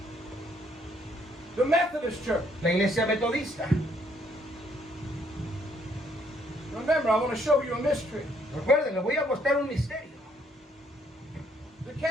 The Methodist Church. La iglesia metodista. Remember, I want to show you a mystery. Recuerden, les voy a mostrar un misterio. The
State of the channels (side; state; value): both; normal; correlation 0.68